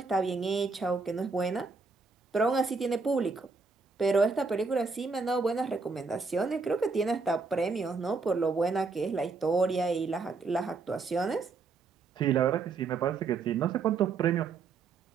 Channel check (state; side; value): quieter; left; 4.5 dB